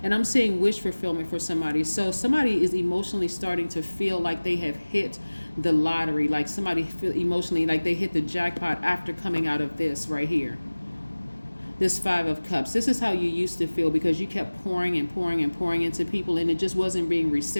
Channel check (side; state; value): both; inverted; correlation -1.00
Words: And I'm seeing wish fulfillment for somebody. So somebody is emotionally starting to feel like they have hit the lottery, like somebody feel emotionally like they hit the jackpot after coming out of this right here. This Five of Cups. This is how you used to feel because you kept pouring and pouring and pouring into people and it just wasn't being